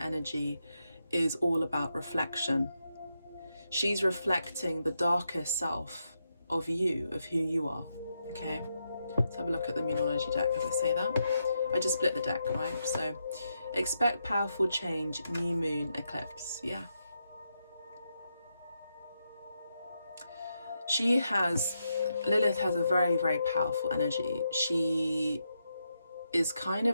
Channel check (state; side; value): inverted; both; correlation -0.83